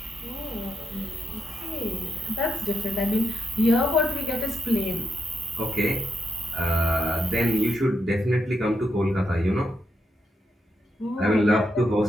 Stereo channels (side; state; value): both; normal; correlation 0.83